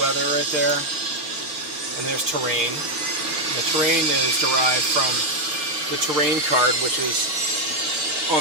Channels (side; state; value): left; late; 6.9 ms